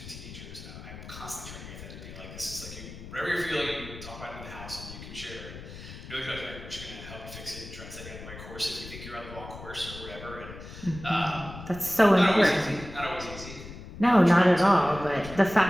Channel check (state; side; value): noise; left; rumble, 13 dB below the sound